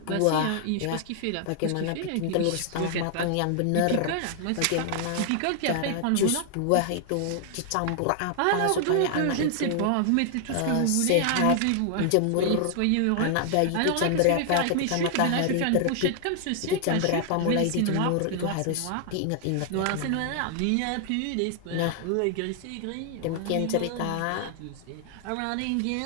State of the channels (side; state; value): both; different; correlation 0.00